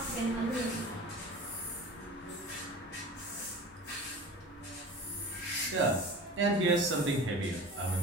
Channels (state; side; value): normal; both; correlation 0.37